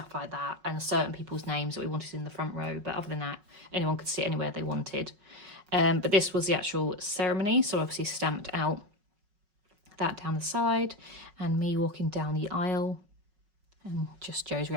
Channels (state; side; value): late; left; 5.4 ms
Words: like that, and certain people's names that we wanted in the front row, but other than that anyone could sit anywhere they wanted. But this was the actual ceremony, so obviously stamped out that down the side, and me walking down the aisle, and just Joe's